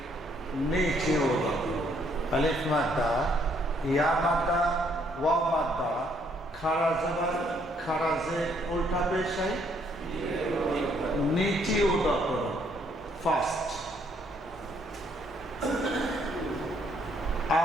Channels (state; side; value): normal; both; correlation 0.68